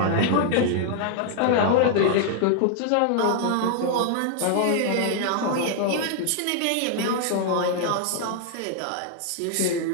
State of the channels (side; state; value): both; different; correlation 0.00